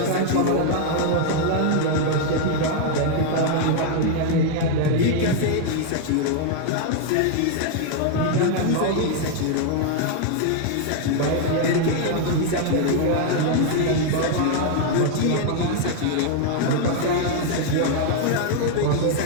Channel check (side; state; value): both; different; correlation 0.00